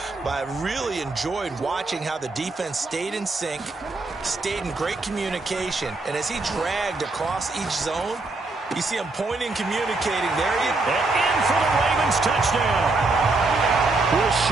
But I really enjoyed watching how the defense stayed in sync, stayed in great communication. And as he dragged across each zone, you see him pointing, communicating. There he is. And in for the Ravens touchdown.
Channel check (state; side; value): quieter; left; 3.4 dB